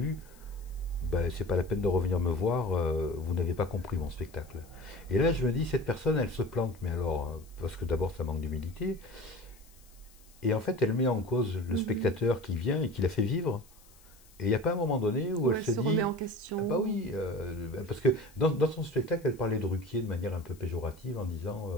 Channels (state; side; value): noise; left; hiss, 26 dB below the sound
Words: ben, c'est pas la peine de revenir me voir, vous n'avez pas compris mon spectacle. Et là, je me dis, cette personne, elle se plante, mais alors, parce que d'abord, ça manque d'humilité, et en fait, elle met en cause le spectateur qui vient et qui la fait vivre. Et il n'y a pas un moment donné où elle se dit. Remet en question. Ah bah oui, parce que dans son spectacle, elle parlait de Ruquier de manière un peu péjorative en